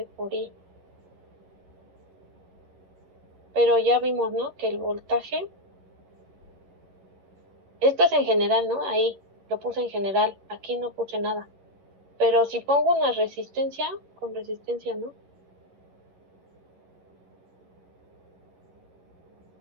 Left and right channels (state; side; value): late; left; 11 ms